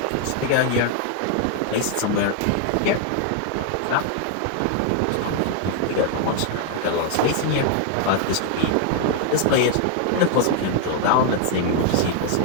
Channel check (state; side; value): different; both; correlation 0.00